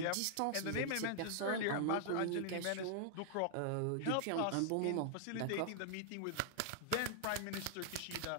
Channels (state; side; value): different; both; correlation -0.01